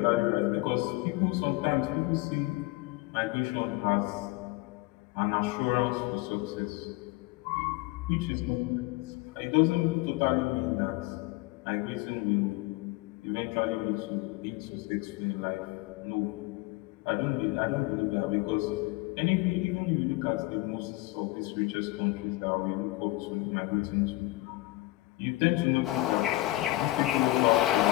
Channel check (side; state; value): right; quieter; 19.7 dB